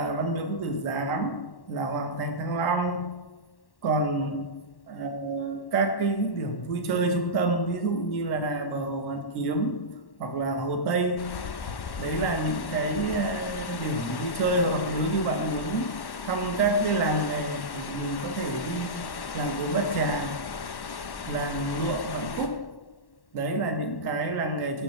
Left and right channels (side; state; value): right; late; 1.1 ms